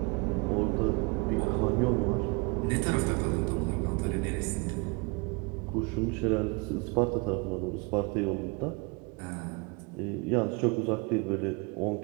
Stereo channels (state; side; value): quieter; left; 29.6 dB